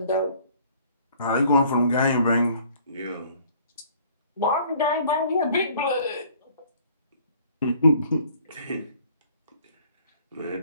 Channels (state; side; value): inverted; both; correlation -0.56